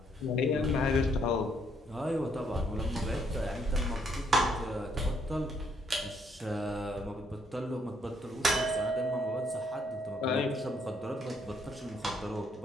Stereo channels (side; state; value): both; normal; correlation 0.71